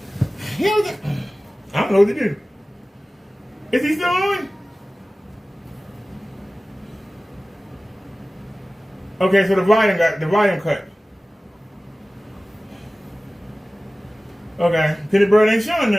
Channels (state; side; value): normal; both; correlation 0.97